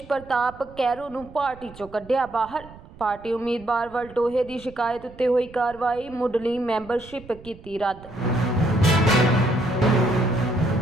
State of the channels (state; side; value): noise; right; rumble, 20 dB below the sound